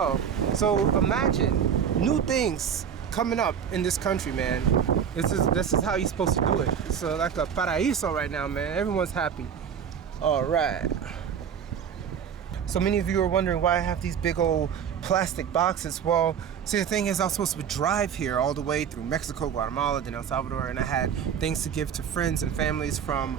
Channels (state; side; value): quieter; left; 7.9 dB